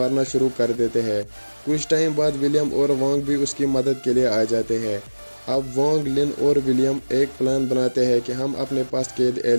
शुरू कर देते हैं। कुछ टाइम बाद विलियम और वोंग भी उसकी मदद के लिए आ जाते हैं। अब वोंग, लिन और विलियम एक प्लान बनाते हैं कि हम अपने पास कैद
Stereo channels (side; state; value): both; inverted; correlation -1.00